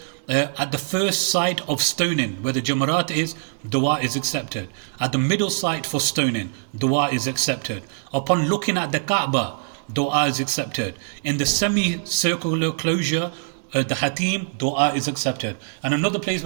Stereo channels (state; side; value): silent; left; digital silence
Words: At the first site of stoning, where the Jamarat is, dua is accepted. At the middle site for stoning, dua is accepted. Upon looking at the Kaaba, dua is accepted. In the semicircular closure, the Hatim, dua is accepted. And another place